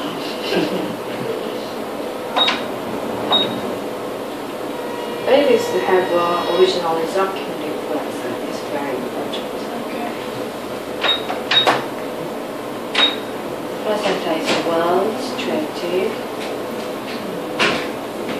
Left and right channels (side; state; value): both; identical; correlation 1.00